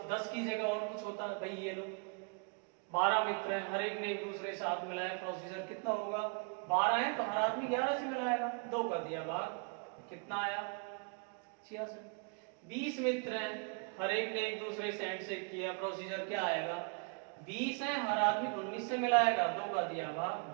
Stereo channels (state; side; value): quieter; left; 36.0 dB